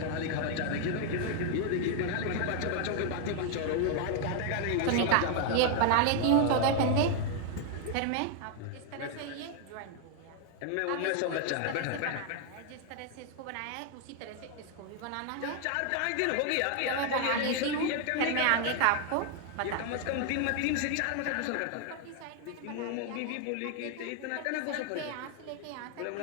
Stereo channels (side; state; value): both; different; correlation 0.00